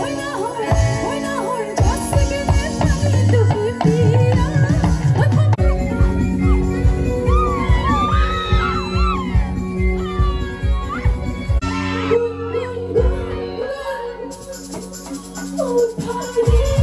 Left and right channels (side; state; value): both; identical; correlation 1.00